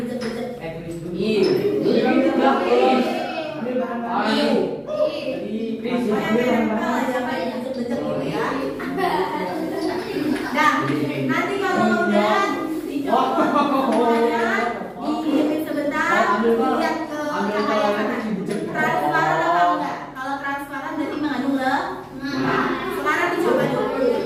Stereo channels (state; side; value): identical; both; correlation 1.00